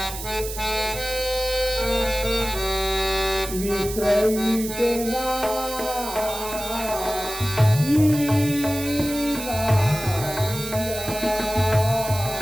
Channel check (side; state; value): right; noise; hiss, 9 dB below the sound